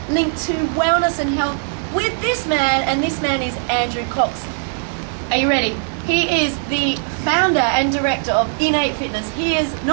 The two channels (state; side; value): silent; left; 66 dB below the other